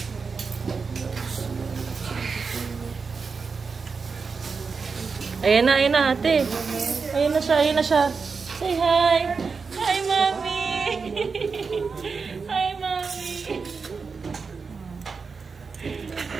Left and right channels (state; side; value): quieter; left; 5.0 dB